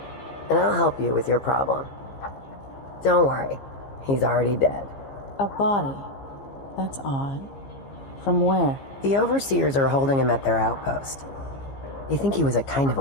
and I'll help you with your problem. Don't worry, he's already dead. A body? That's odd. From where? The overseers are holding him at their outpost. They think he was a kind of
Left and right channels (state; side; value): late; right; 15 ms